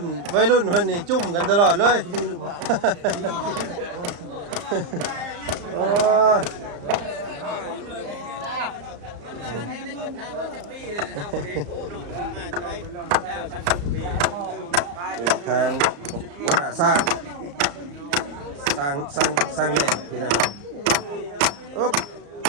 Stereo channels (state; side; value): late; left; 34 ms